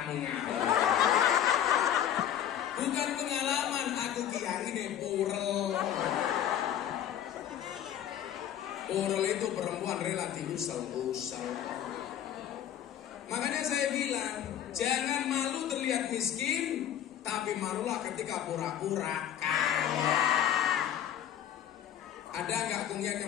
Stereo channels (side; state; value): right; quieter; 10.5 dB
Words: ngawur. Bukan pengalaman, aku kiai ini purel. Purel itu perempuan relatif usel-usel. Makanya saya bilang, jangan malu terlihat miskin, tapi malulah ketika pura-pura kaya. Ada nggak kungyak